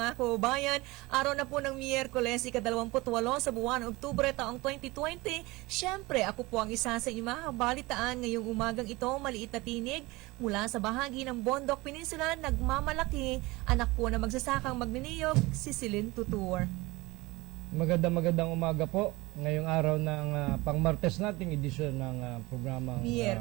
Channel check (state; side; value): quieter; left; 21.8 dB